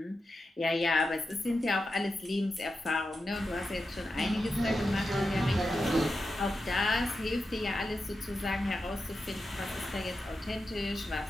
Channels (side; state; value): both; normal; correlation 0.90